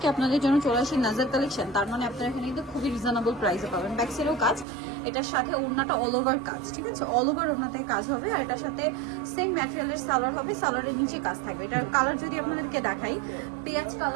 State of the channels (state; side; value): drops out; left; at 4.7 s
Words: আপনাদের জন্য চলে আসি নাজার কালেকশন, তার মানে আপনারা এখানে কিন্তু খুবই রিজনেবল প্রাইসে পাবেন। ব্যাক সাইডেও কাজ, এটার সাথে ওড়নাটা অল ওভার কাজ, ঠিক আছে? অল ওভার ওড়নাতে কাজ হবে। আর এটার সাথে সেম ম্যাটেরিয়ালের সালোয়ার হবে, সালোয়ারের নিচে কাজ থাকবে। এটার কালার যদি আপনাদেরকে দেখাই, পেঁয়াজ